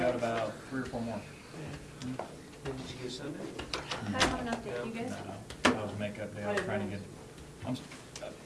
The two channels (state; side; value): identical; both; correlation 1.00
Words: about 3 or 4 more. Did you get Sunday? I don't have an update, you guys? No, that was makeup day. I was trying to get, I